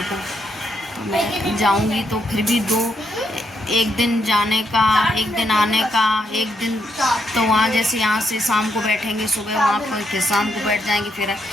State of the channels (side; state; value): both; normal; correlation 0.77